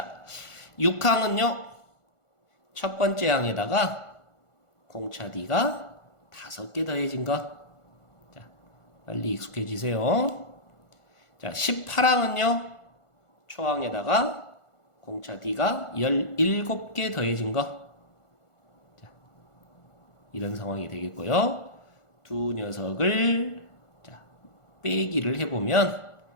6항은요. 첫 번째 항에다가 공차 D가 5개 더해진 것. 자, 빨리 익숙해지세요. 자, 18항은요. 초항에다가 공차 D가 17개 더해진 거. 자, 이런 상황이 되겠고요. 두 녀석을 자, 빼기를 해보면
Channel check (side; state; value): right; late; 1.4 ms